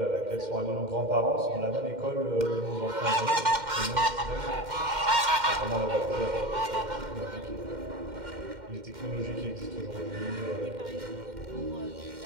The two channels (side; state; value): left; late; 2.1 ms